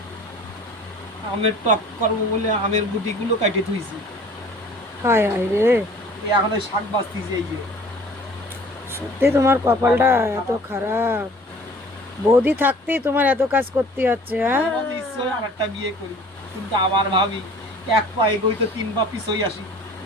আমের টক করবো বলে আমের গুটিগুলো কাটে থুইছি, হায় হায় রে, এই এখন ওই শাক বাঁচতেছি এই যে। সত্যি তোমার কপালটা মাথা এত খারাপ। খারাপ। বৌদি থাকতেই তোমার এত কাজ করতে হচ্ছে, হ্যাঁ? মাঝে মাঝে ইচ্ছে হয় আর একটা বিয়ে করি, কিন্তু আবার ভাবি এক পা এগোই তো তিন পা পিছই আসি,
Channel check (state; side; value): normal; both; correlation 0.49